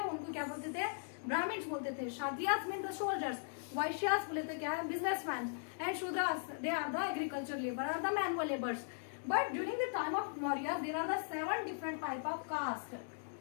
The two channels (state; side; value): silent; right; digital silence